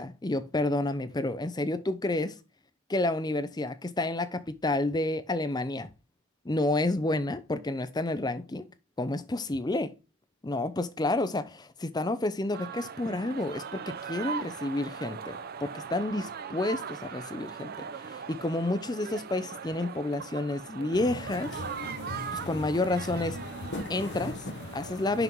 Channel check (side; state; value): both; normal; correlation 0.59